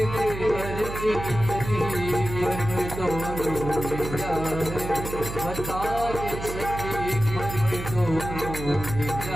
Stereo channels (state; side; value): noise; right; hum, 8 dB below the sound